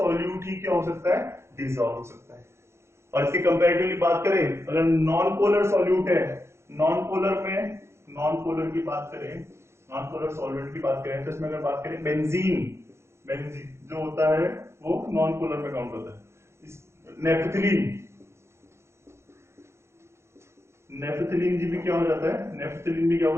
ही क्या हो सकता है, डिसॉल्व हो सकता है। और इसके कंपैरेटिवली बात करें, अगर नॉन पोलर सॉल्यूट है, नॉन पोलर की बात करें, नॉन पोलर सॉल्वेंट की बात करें, तो इसमें अगर बात करें बेंजीन जो होता है वो नॉन पोलर में काउंट होता है। नेफ्थलीन जी भी क्या हो जाता है, नेफ्थलीन भी क्या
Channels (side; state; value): left; late; 0.13 ms